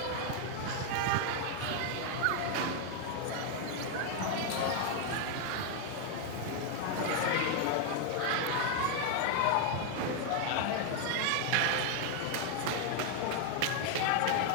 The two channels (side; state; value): both; different; correlation 0.01